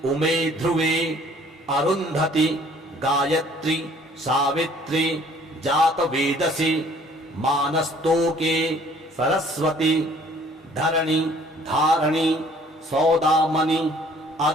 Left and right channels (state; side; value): normal; both; correlation 0.57